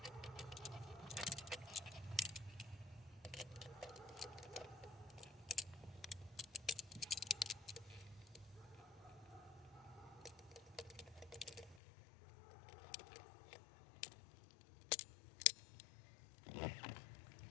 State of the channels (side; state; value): right; drops out; at 11.8 s